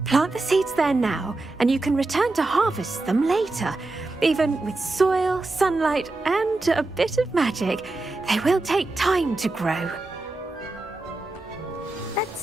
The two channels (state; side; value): quieter; left; 3.1 dB